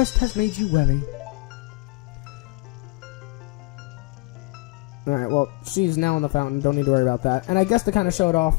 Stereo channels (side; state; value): right; quieter; 25.4 dB